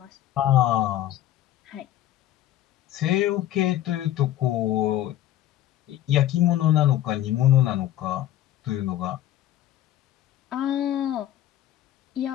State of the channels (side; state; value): right; quieter; 12.9 dB